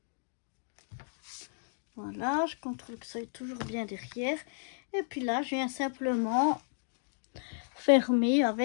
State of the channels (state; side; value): silent; right; digital silence